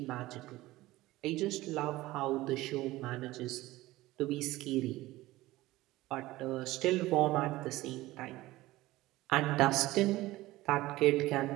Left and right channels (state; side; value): quieter; left; 17.9 dB